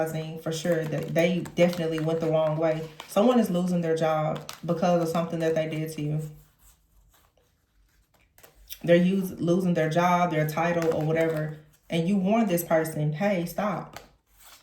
for sure that they definitely went the wrong way. Someone is losing their job because of something that they did to you. They're losing their job, their title, or whatever. And you warned this person, hey, stop.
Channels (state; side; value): identical; both; correlation 1.00